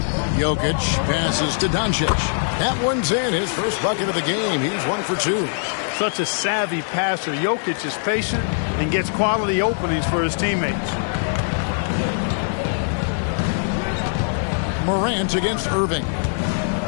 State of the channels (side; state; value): right; silent; digital silence